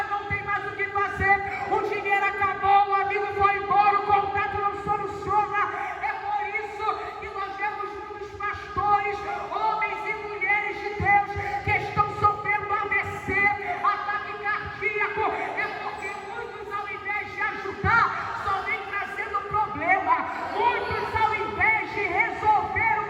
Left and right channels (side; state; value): both; identical; correlation 1.00